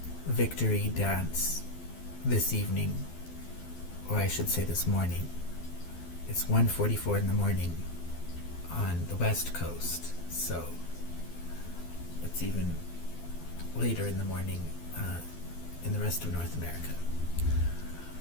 victory dance this evening, or I should say this morning. It's 1:44 in the morning on the West Coast, so it's even later in the morning in the rest of North America.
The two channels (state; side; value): late; right; 12 ms